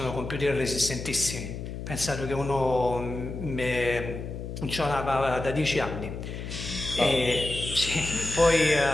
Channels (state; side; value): noise; left; hum, 7 dB below the sound